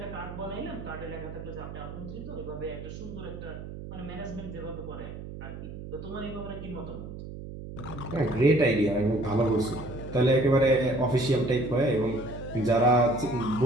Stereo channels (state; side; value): noise; right; hum, 11 dB below the sound